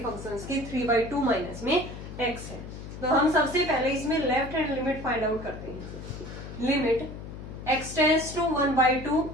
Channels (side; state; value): left; noise; hum, 11 dB below the sound